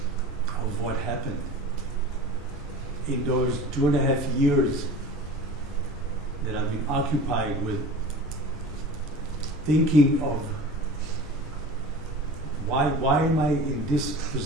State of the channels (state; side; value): normal; both; correlation 0.37